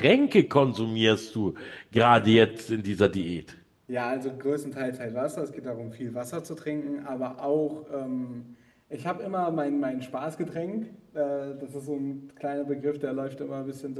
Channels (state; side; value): identical; both; correlation 1.00